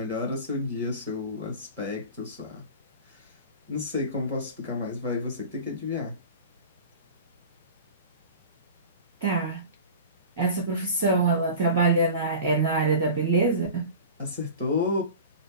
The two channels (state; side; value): inverted; both; correlation -0.35